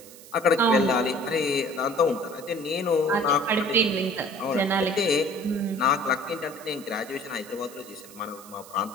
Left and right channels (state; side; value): noise; right; hiss, 19 dB below the sound